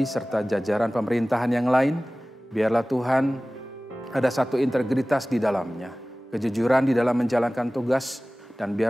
serta jajaran pemerintahan yang lain. Biarlah Tuhan ada satu integritas di dalamnya, kejujuran di dalam menjalankan tugas, dan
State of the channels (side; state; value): both; normal; correlation 0.98